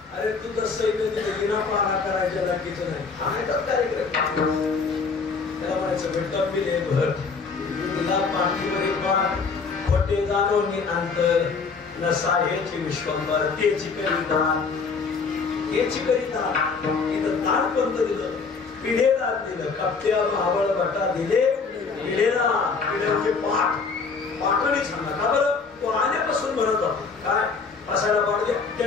अरे तू तर सैन्य तिथे विना पारा करायच्या लागीचं नाही. हा कार्यक्रम त्याला म्हणायचं भेटत बिले भर तुला पाठीमध्ये पाठ खोटे जाणून अंतर नसा हेची विश्वंभर तेची करिता हेची करिता इथं ताट पंत दिलं पिढेला दिलं कप्त्या आवळ बटा दिले पिढेला पिढे पाठ पाठवणी सांगा का बरं तो आल्यापासून म्हणत होता काय असायला पाड द्या त्या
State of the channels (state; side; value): quieter; right; 4.9 dB